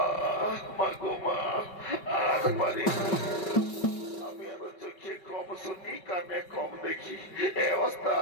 মা গো মা, আর পারি আমি আরো চোখে কম শুনি কানে কম দেখি।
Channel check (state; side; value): late; right; 5.2 ms